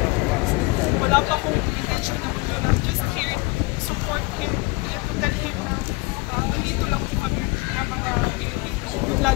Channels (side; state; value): right; quieter; 25.0 dB